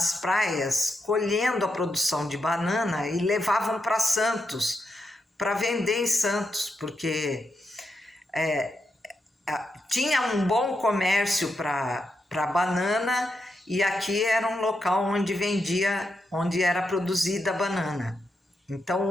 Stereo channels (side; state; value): both; normal; correlation 0.84